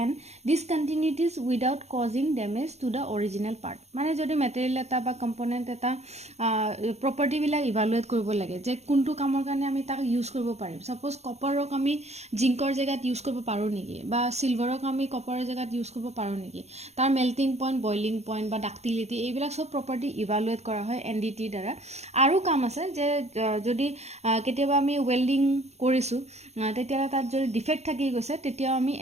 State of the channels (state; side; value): late; left; 0.32 ms